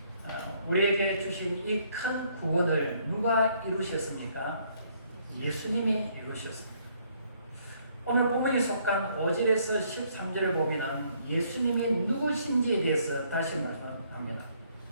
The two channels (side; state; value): both; inverted; correlation -0.67